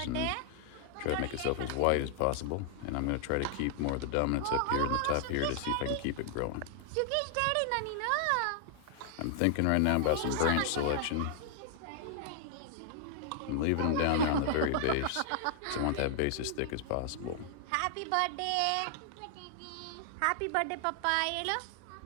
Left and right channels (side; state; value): both; different; correlation -0.01